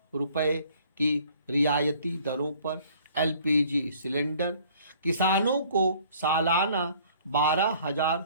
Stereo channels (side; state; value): both; inverted; correlation -0.56